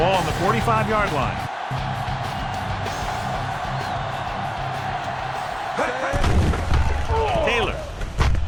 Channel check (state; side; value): identical; both; correlation 1.00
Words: on the 45-yard line. Taylor